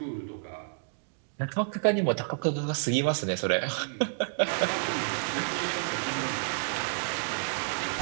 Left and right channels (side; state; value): left; silent; digital silence